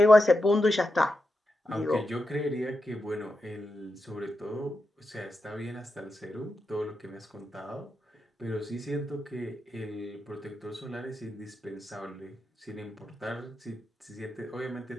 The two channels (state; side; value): normal; both; correlation 0.87